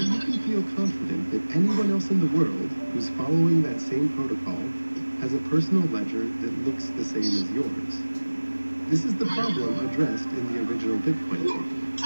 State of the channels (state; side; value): inverted; both; correlation -1.00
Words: you can feel confident that anyone else in the world who's following that same protocol has a personal ledger that looks the same as yours? This is the problem addressed in the original Bitcoin